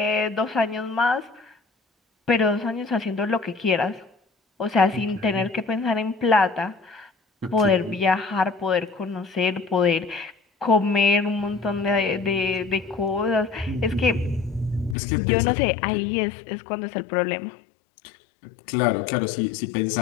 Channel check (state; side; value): drops out; right; at 15.0 s